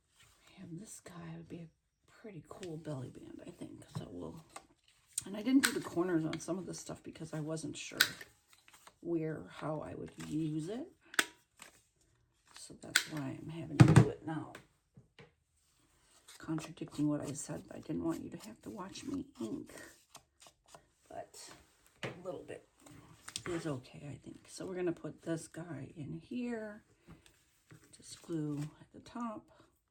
have this guy. Would be a pretty cool belly band, I think. So we'll... And I didn't do the corners on some of this stuff because I wasn't sure how I would use it. So that's why I'm having to do it now. Contradicting what I said, I didn't want you to have to watch me ink. But a little bit is okay, I think. So we're going to put this guy in here. Just glue at the top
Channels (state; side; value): identical; both; correlation 1.00